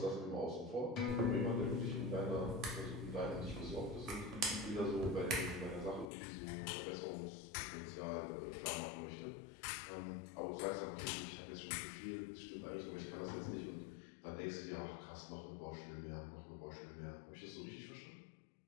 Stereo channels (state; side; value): drops out; right; at 6.1 s